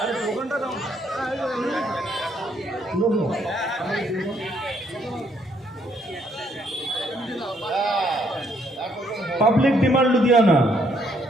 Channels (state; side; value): normal; both; correlation 0.70